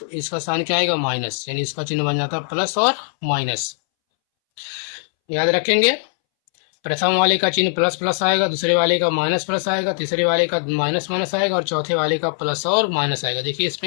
इसका साइन क्या आएगा? माइनस, यानी इसका चिन्ह बन जाता है प्लस और माइनस। याद रखेंगे, प्रथम वाले का चिन्ह प्लस प्लस आएगा, दूसरे वाले का माइनस प्लस आएगा, तीसरे वाले का माइनस माइनस आएगा, और चौथे वाले का प्लस और माइनस आएगा। देखिए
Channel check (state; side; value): silent; right; 64 dB below the other